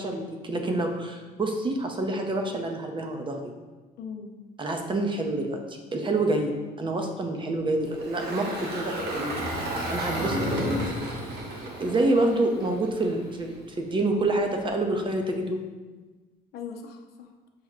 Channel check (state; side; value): normal; both; correlation 0.58